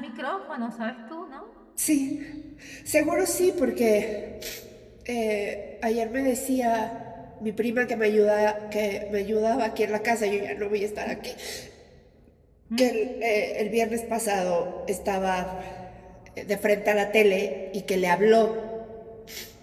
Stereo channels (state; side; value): identical; both; correlation 1.00